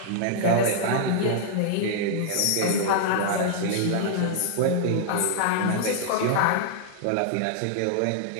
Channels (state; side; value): different; both; correlation -0.01